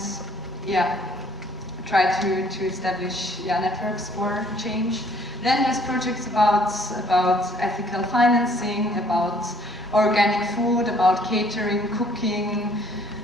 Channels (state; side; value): normal; both; correlation 0.60